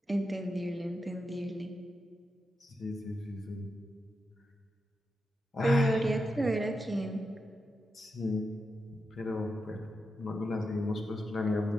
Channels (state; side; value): normal; both; correlation 0.87